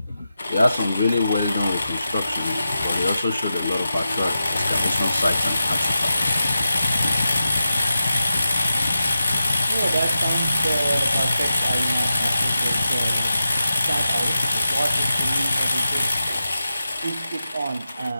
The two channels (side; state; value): both; inverted; correlation -0.91